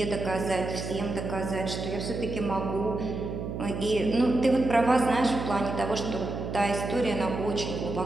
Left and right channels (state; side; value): noise; right; hum, 5 dB below the sound